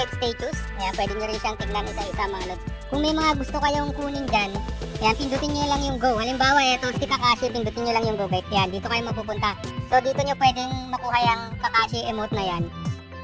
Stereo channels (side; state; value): both; identical; correlation 1.00